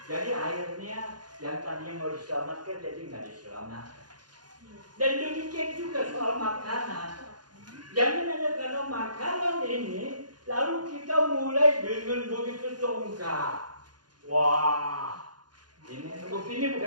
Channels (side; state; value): left; late; 0.70 ms